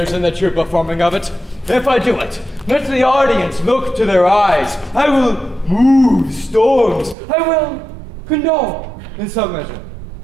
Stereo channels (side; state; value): left; drops out; at 7.2 s